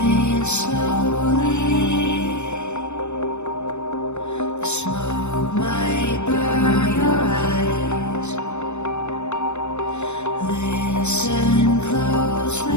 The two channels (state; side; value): late; right; 0.82 ms